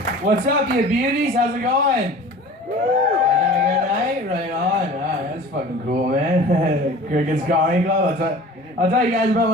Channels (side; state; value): both; normal; correlation 0.42